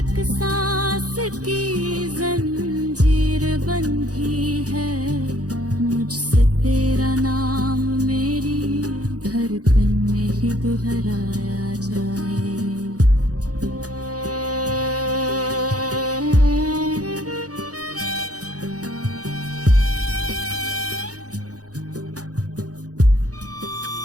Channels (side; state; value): left; late; 0.67 ms